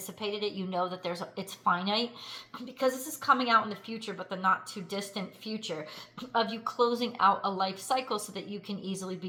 it. You know that it's finite, because this is coming out in the future, but the not too distant future of you closing out a life cycle so that you can easily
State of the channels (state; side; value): identical; both; correlation 1.00